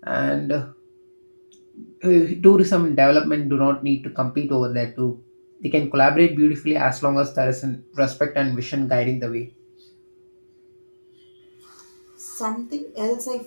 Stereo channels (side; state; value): both; inverted; correlation -1.00